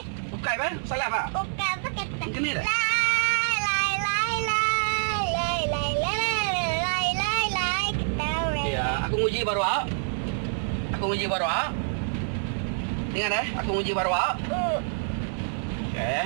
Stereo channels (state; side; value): silent; left; 60 dB below the other